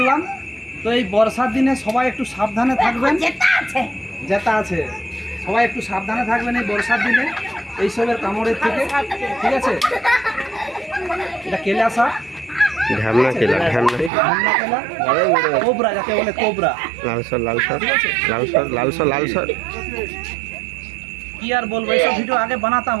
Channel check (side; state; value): left; drops out; at 14.1 s